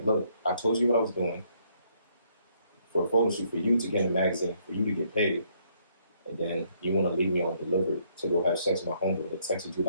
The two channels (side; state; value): both; inverted; correlation -0.70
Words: look, I told you what I was doing for a photo shoot for you to get in a magazine, for you to get paid. And then you want to leave me on delivered to go have sex with my homeboy that texted you